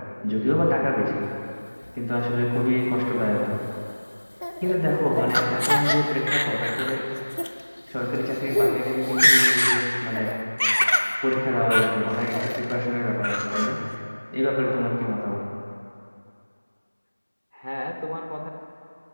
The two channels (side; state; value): both; inverted; correlation -1.00